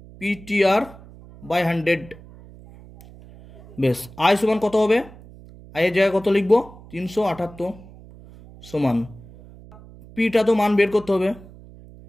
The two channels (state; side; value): noise; right; hum, 20 dB below the sound